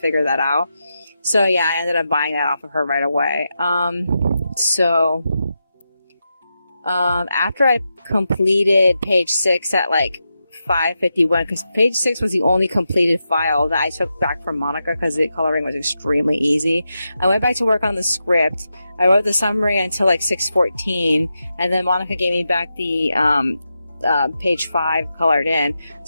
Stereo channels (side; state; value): both; inverted; correlation -0.88